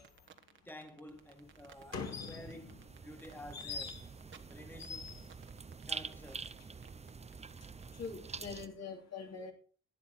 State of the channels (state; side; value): normal; both; correlation 0.38